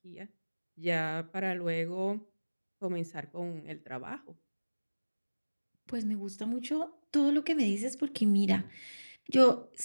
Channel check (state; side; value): inverted; both; correlation -1.00